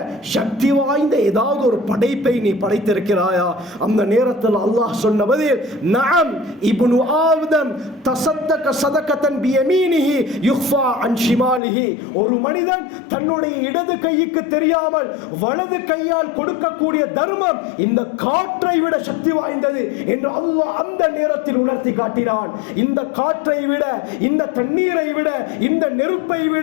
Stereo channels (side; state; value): right; drops out; at 11.6 s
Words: சக்தி வாய்ந்த ஏதாவது ஒரு படைப்பை நீ படைத்திருக்கிறாயா? அந்த நேரத்தில் அல்லாஹ் சொன்ன பதில், நஅம் இப்னு ஆதம் தஸத்தக ஸதகத்தன் பியமீனிஹி யுஃபா அன் ஷிமாலிஹி, ஒரு மனிதன் தன்னுடைய இடது கைக்கு தெரியாமல் வலது கையால் கொடுக்கக்கூடிய தர்மம் இந்த காற்றை விட சக்தி வாய்ந்தது என்று அல்லாஹ் அந்த நேரத்தில் உணர்த்தி காட்டினான். இந்த காற்றை விட, இந்த தண்ணீரை விட, இந்த நெருப்பை